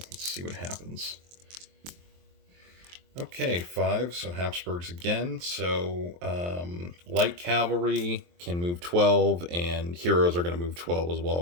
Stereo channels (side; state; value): left; late; 23 ms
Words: see what happens. Okay, 5. So Habsburgs again. So light cavalry can move 12, and heroes are going to move 12 as